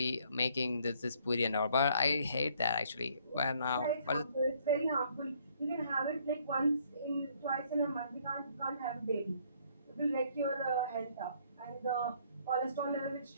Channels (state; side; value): inverted; both; correlation -0.64